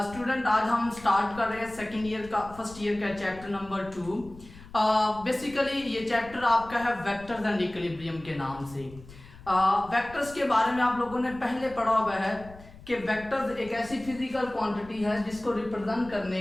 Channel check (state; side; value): noise; left; rumble, 19 dB below the sound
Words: स्टूडेंट। आज हम स्टार्ट कर रहे हैं सेकेंड ईयर का फर्स्ट ईयर का चैप्टर नंबर 2। बेसिकली ये चैप्टर आपका है वेक्टर्स एंड इक्विलिब्रियम के नाम से। वेक्टर्स के बारे में आप लोगों ने पहले पढ़ा हुआ है कि वेक्टर्स एक ऐसी फिजिकल क्वांटिटी है जिसको रिप्रेजेंट